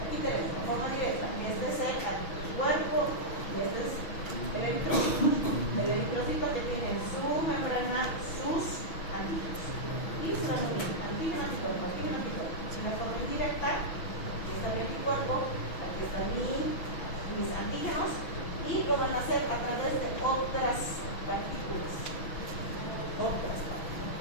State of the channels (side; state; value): right; late; 6.1 ms